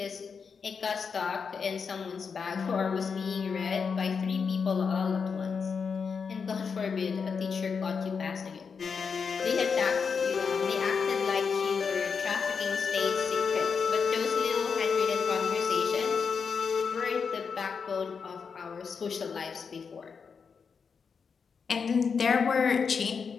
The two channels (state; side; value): quieter; right; 5.8 dB